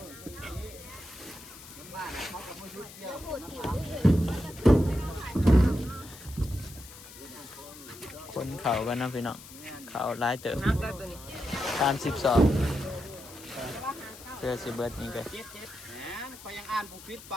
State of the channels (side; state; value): left; noise; hiss, 17 dB below the sound